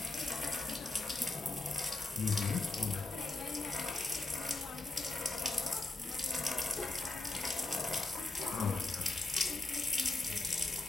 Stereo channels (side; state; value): right; quieter; 3.1 dB